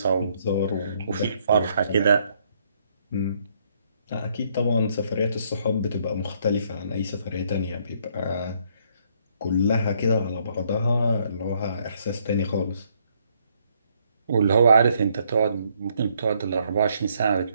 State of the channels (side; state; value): both; inverted; correlation -0.70